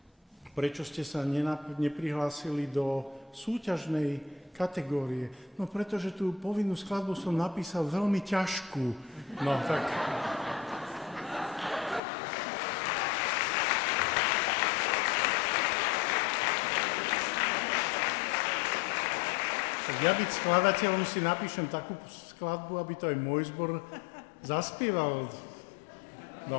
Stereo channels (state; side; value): drops out; right; at 12.0 s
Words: prečo ste sa neprihlásili do súťažnej kategórie. No pretože tú povinnú skladbu som napísal veľmi ťažkú. No tak... Ja byť skladateľom si napíšem takú skladbu, aby to aj môj zbor zaspieval.